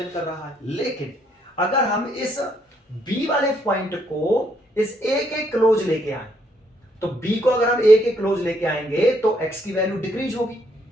कर रहा है। लेकिन अगर हम इस b वाले पॉइंट को इस a के क्लोज लेके आए, तो b को अगर हम a के क्लोज लेके आएंगे तो x की वैल्यू डिक्रीज होगी,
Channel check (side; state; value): both; normal; correlation 0.72